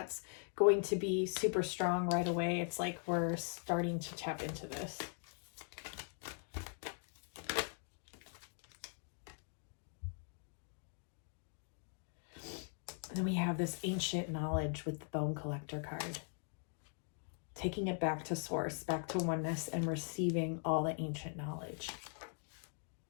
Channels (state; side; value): silent; right; 50 dB below the other